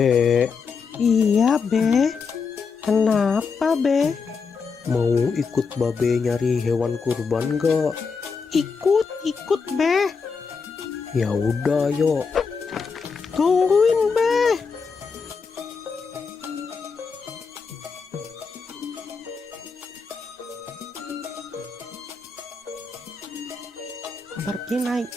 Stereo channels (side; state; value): right; quieter; 5.2 dB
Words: Iya, Be. Kenapa, Be? mau ikut babe nyari hewan kurban gak? Ikut, Be. Ya udah, yuk. Tungguin, Be. Pergi naik